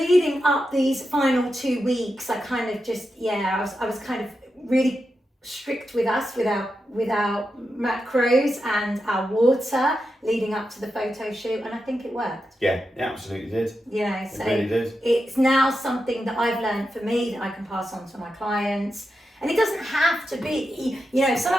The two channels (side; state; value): both; normal; correlation 0.88